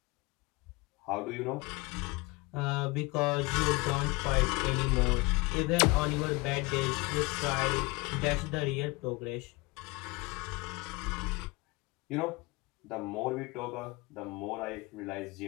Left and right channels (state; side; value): quieter; right; 24.5 dB